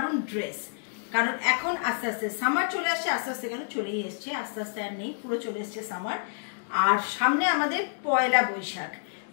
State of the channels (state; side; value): silent; right; digital silence